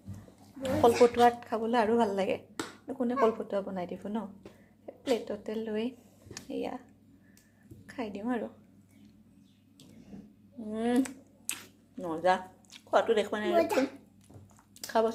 কলপতুৱাত খাবলৈ আৰু ভাল লাগে। কোনে কলপতুৱা বনাই দিব ন? প্লেটতে লৈ এয়া খাই দিওঁ আৰু। মজা। খোৱাটো দেখুৱা নাই।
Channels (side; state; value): both; identical; correlation 1.00